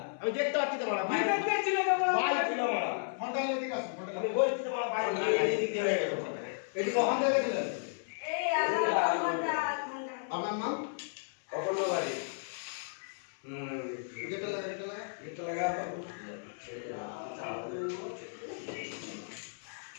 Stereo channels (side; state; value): right; silent; 55 dB below the other